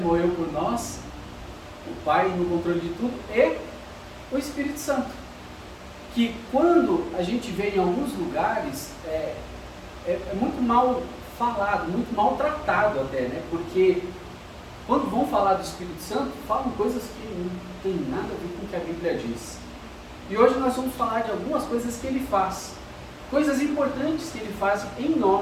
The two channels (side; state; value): both; identical; correlation 1.00